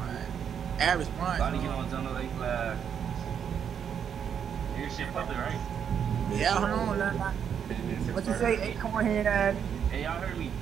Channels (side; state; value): left; quieter; 8.0 dB